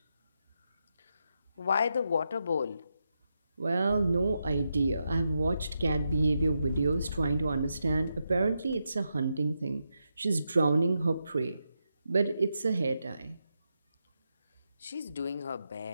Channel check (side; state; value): both; inverted; correlation -0.85